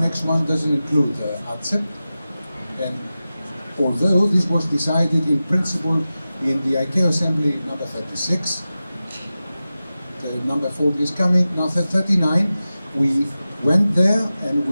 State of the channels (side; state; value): both; inverted; correlation -0.94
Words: 1 doesn't include ATSEP, and although this was decided in principle in the ICAO Assembly number 36, the number 40 is coming, now 39, we went there and